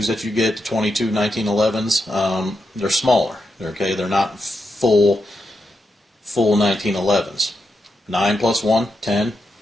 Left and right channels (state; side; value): normal; both; correlation 0.85